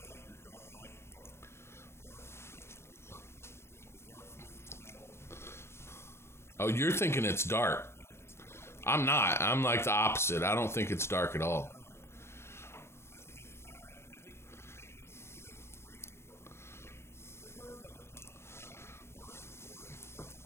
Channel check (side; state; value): right; late; 0.12 ms